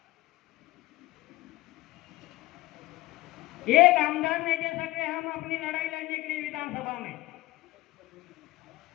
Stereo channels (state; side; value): quieter; right; 18.7 dB